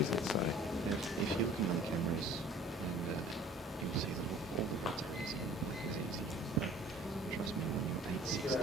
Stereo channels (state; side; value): normal; both; correlation 0.49